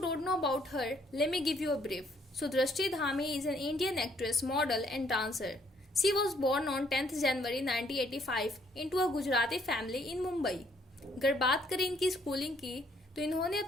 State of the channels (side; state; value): both; normal; correlation 0.67